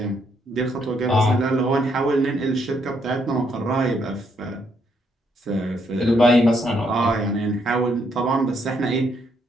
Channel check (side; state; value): both; normal; correlation 0.73